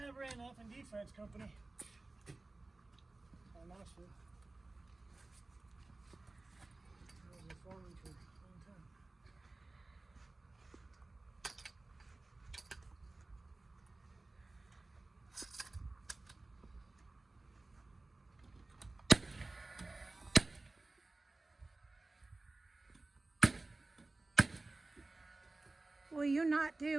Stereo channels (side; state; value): left; quieter; 3.2 dB